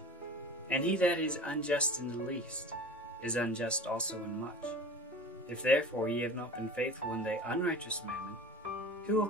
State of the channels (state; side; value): normal; both; correlation 0.37